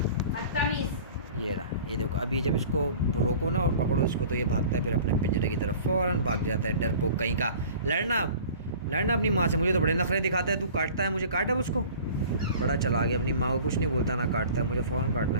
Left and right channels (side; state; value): both; inverted; correlation -0.44